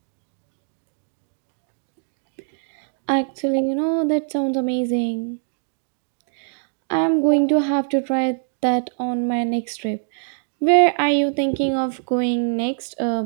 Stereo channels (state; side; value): silent; left; digital silence